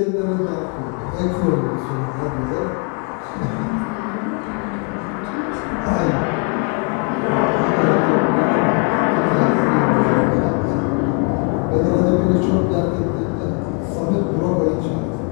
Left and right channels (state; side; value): quieter; right; 38.4 dB